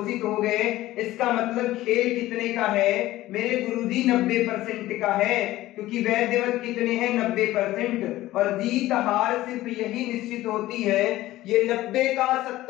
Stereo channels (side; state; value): right; quieter; 16.2 dB